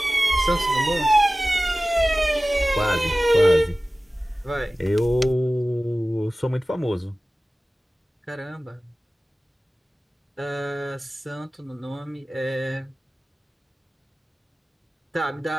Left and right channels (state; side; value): normal; both; correlation 0.96